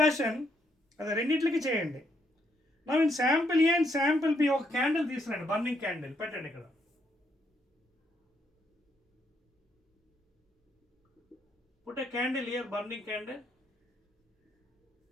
అది రెండింటికి చేయండి. Now in sample A and sample B ఒక క్యాండిల్ తీసుకురండి, burning candle పెట్టండి ఇక్కడ. Put a candle here, burning candle.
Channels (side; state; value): both; normal; correlation 0.74